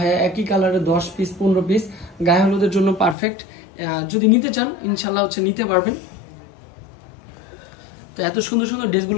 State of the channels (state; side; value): drops out; right; at 3.2 s